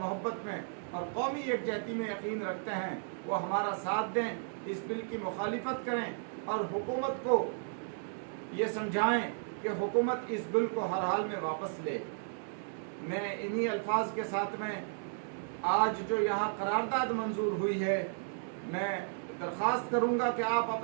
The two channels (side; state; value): left; silent; digital silence